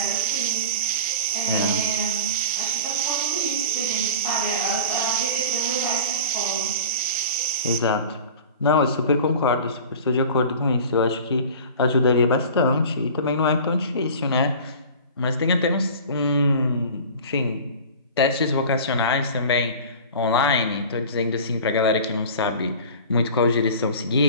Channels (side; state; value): both; inverted; correlation -0.38